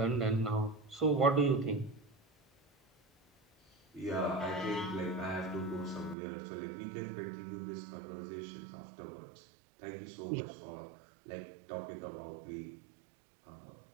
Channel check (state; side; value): drops out; left; at 6.2 s